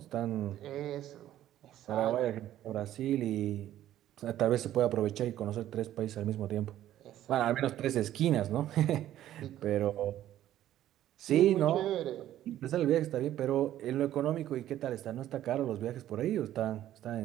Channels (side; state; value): left; quieter; 12.6 dB